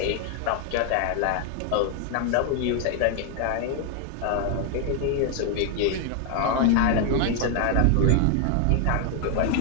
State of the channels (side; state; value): both; different; correlation 0.00